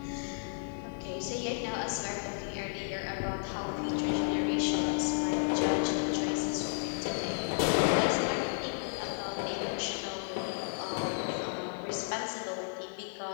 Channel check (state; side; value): silent; right; digital silence